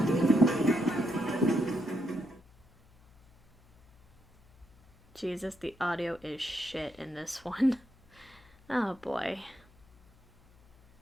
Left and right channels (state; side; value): noise; left; hum, 28 dB below the sound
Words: Jesus, the audio is shit in this one. Oh boy.